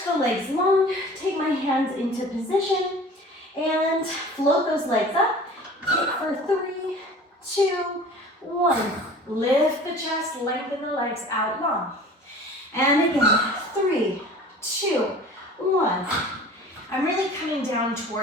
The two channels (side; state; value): both; normal; correlation 0.43